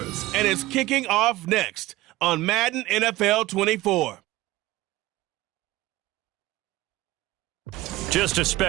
and it's kicking off next on Madden NFL 24. Just a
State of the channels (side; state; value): left; quieter; 18.2 dB